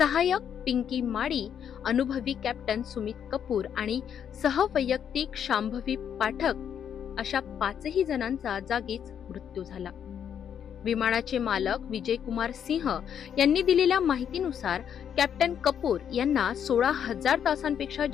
पिंकी माडी, अनुभवी कॅप्टन सुमित कपूर आणि सहवैयक्तिक शांभवी पाठक अशा 5ही जणांचा जागीच मृत्यू झाला। विमानाचे मालक विजय कुमार सिंह यांनी दिलेल्या माहितीनुसार कॅप्टन कपूर यांना 16,000 तासांपेक्षा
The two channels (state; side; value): quieter; right; 8.6 dB